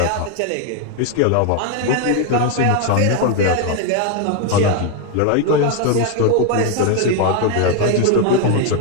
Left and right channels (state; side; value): different; both; correlation 0.01